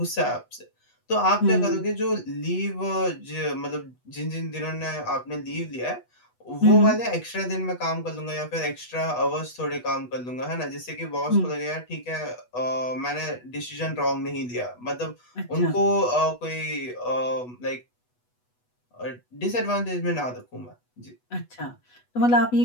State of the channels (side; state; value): right; late; 8.2 ms